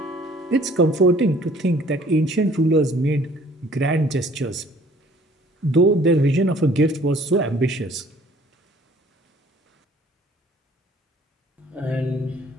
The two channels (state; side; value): normal; both; correlation 0.56